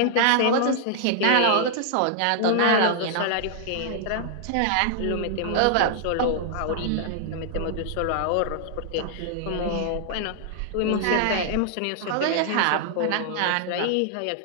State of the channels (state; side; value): different; both; correlation -0.01